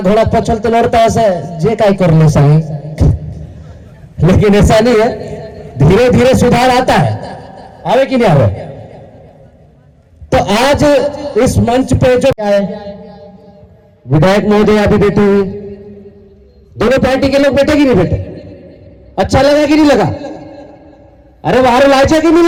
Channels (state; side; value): identical; both; correlation 1.00